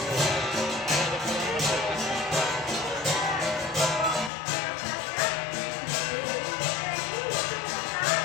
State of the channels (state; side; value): drops out; right; at 4.3 s